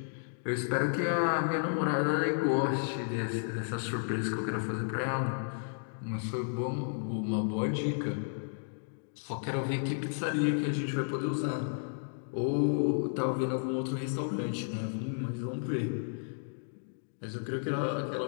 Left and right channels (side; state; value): right; silent; digital silence